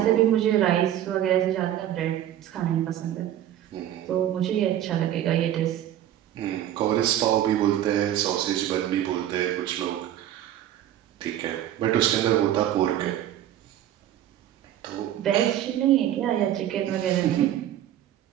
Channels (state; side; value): quieter; left; 11.8 dB